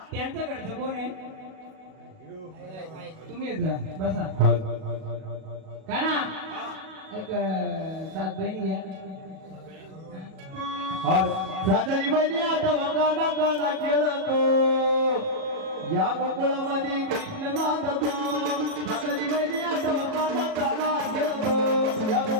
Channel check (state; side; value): late; left; 37 ms